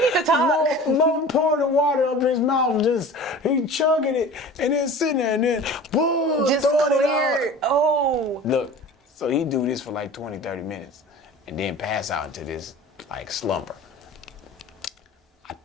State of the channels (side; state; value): both; normal; correlation 0.39